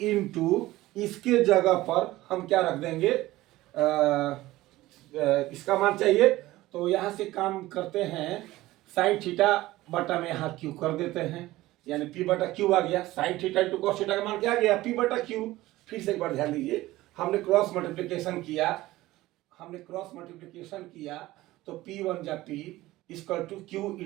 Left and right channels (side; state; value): left; quieter; 17.3 dB